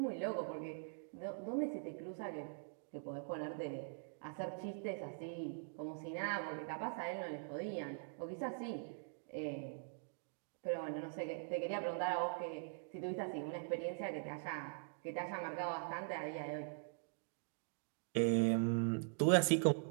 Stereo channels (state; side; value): silent; left; digital silence